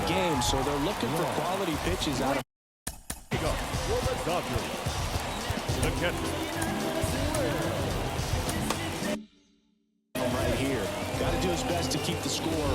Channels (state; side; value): identical; both; correlation 1.00